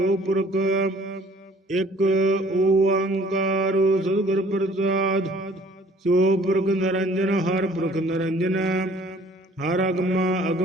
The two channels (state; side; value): normal; both; correlation 0.55